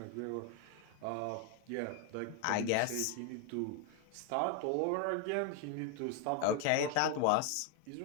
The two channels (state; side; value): different; both; correlation 0.01